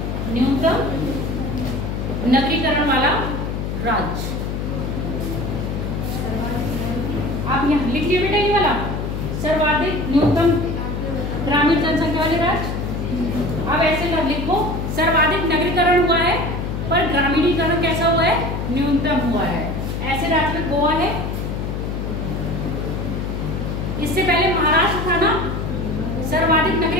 न्यूनतम नगरीकरण वाला राज्य। आप यहाँ लिख लिया बेटा ये वाला, सर्वाधिक न्यूनतम ग्रामीण जनसंख्या वाले राज्य। अब ऐसे कर लिखो, सर्वाधिक नगरीकरण हुआ है पर ग्रामीणीकरण कैसा हुआ है? न्यूनतम हुआ है। ऐसे राज्य में गोवा है, इससे पहले महाराष्ट्र था ना सर्वाधिक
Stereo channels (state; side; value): noise; left; hum, 3 dB below the sound